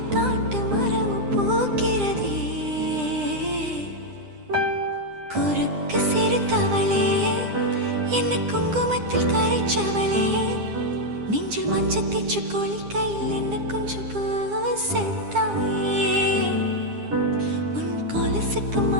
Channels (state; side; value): late; left; 9.9 ms